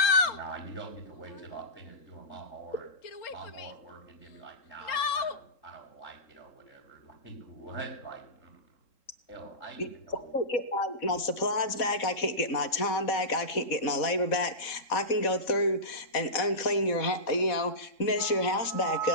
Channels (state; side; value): late; right; 3.8 ms